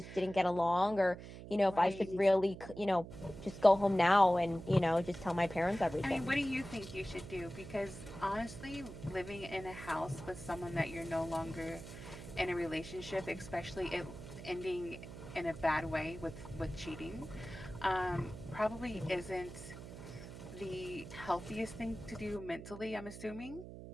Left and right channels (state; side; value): noise; right; hum, 12 dB below the sound